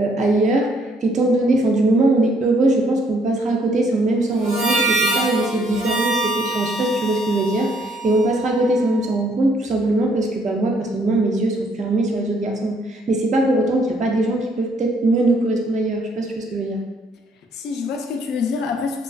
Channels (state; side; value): normal; both; correlation 0.67